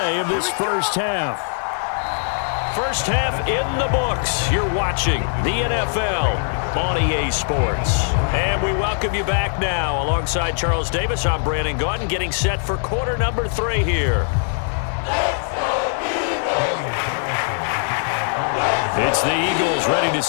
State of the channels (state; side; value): silent; right; 55 dB below the other